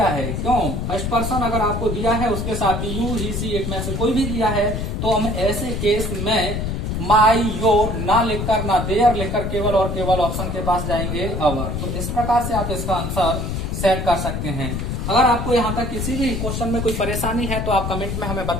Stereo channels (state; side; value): noise; left; rumble, 2 dB below the sound